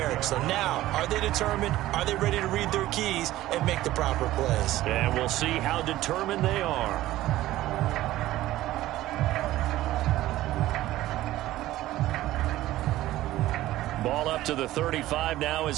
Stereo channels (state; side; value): quieter; left; 15.5 dB